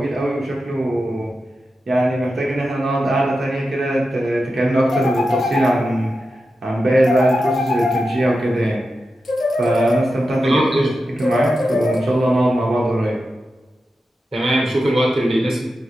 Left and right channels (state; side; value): normal; both; correlation 0.90